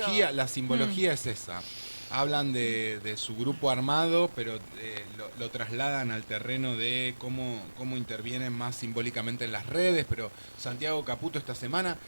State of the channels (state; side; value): inverted; both; correlation -1.00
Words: simbología es esa. Hablan de su grupo armado, pero lo trasladan al terreno de cómo intervienen más simbólicamente en las redes. Pero Santiago Caputo esta semana,